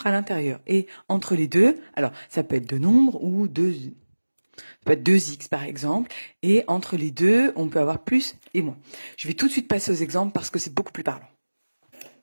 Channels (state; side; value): inverted; both; correlation -1.00